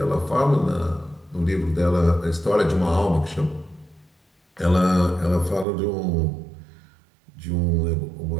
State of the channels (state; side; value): drops out; left; at 5.7 s